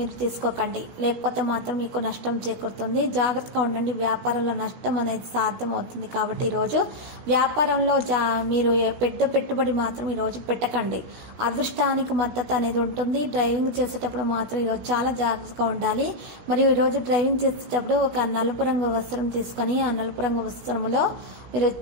తీసుకోకండి, లేకపోతే మాత్రం మీకు నష్టం చేకూరుతుంది. జాగ్రత్తగా ఉండండి. వ్యాపారంలో నష్టం అనేది సాధ్యమవుతుంది. కాబట్టి ఈరోజు వ్యాపారంలో మీరు పెద్ద పెట్టుబడి మాత్రం ఈరోజు పెట్టకండి. అదృష్టానికి మద్దతు అనేది ఉంటుంది. డ్రైవింగ్ చేసేటప్పుడు మాత్రం ఈరోజు చాలా జాగ్రత్తగా ఉండాలి. మరియు ఈరోజు డ్రైవింగ్ చేసేటప్పుడు ఒక నలుపు రంగు వస్త్రం తీసుకొని ఆ నలుపు రంగు వస్త్రంలో మీరు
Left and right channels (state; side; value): late; left; 16 ms